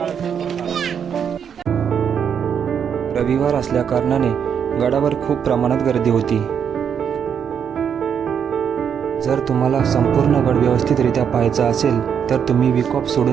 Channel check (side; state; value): left; quieter; 7.7 dB